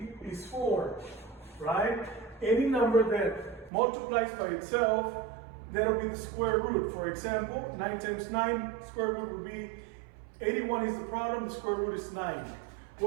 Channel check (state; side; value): drops out; left; at 3.7 s